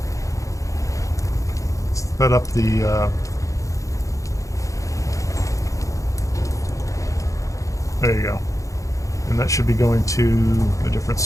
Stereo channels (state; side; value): late; right; 0.16 ms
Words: set up the there you go. And that should be going to a different